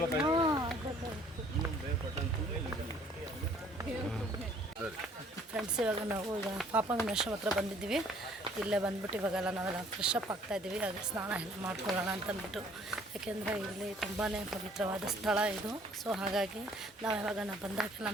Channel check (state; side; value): normal; both; correlation 0.58